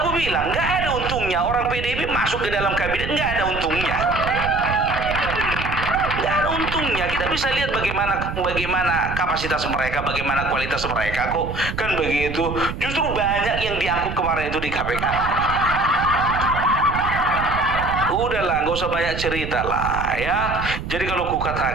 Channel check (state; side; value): noise; right; rumble, 7 dB below the sound